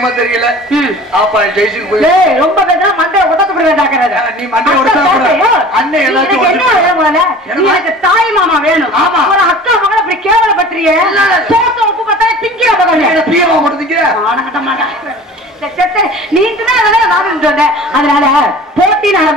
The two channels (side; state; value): both; normal; correlation 0.43